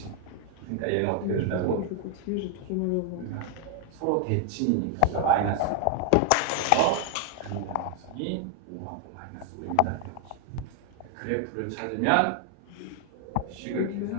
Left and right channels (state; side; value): different; both; correlation 0.00